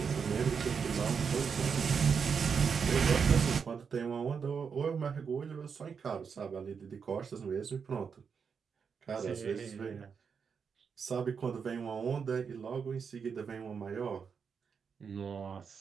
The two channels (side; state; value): left; quieter; 6.2 dB